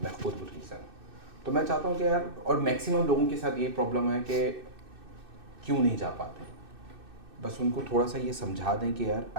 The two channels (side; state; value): left; late; 2.6 ms